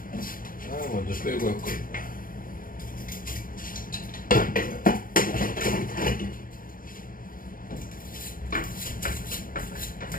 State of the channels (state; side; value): late; right; 0.41 ms